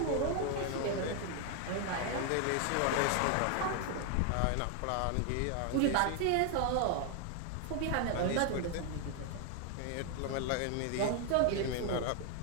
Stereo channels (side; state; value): both; different; correlation 0.00